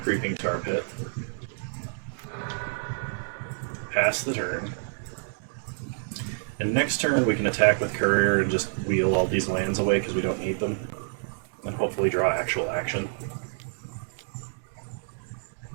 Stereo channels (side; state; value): left; silent; digital silence